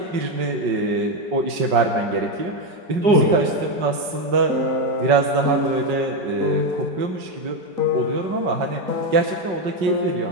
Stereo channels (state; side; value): late; left; 5.4 ms